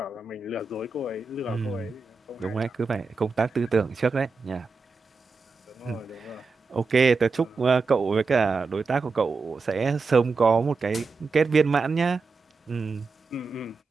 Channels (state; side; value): quieter; left; 4.3 dB